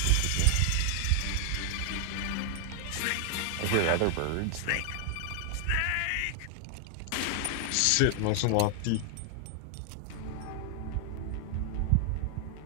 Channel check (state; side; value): different; both; correlation 0.00